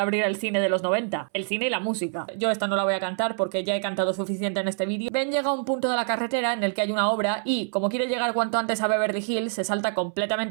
el cine de los 90, el cine y la música. Yo esta no la voy a cantar porque ya he cantado suficiente en este vídeo. Ben llega a un punto de la carretera en el que hay una obra y, como quiere llegar cuanto antes a Beverly Hills, se salta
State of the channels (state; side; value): silent; left; 61 dB below the other